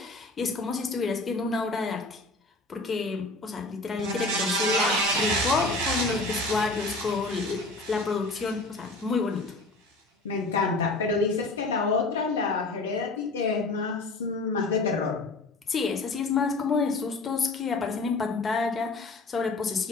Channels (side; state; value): right; quieter; 3.1 dB